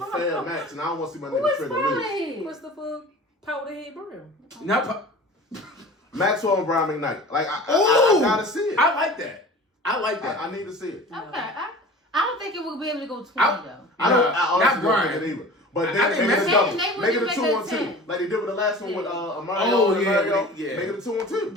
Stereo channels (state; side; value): normal; both; correlation 0.40